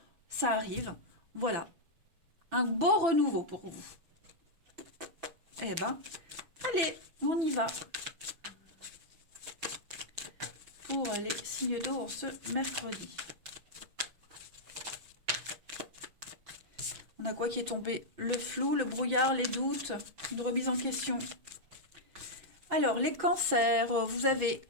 ça arrive. Voilà, un beau renouveau pour vous. Eh ben, allez, on y va. Pour les signes d'eau en ce mercredi. On a quoi qui est tombé? Le flou, le brouillard, les doutes, une remise en question. Alors, les cancers, vous avez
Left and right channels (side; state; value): left; late; 6.0 ms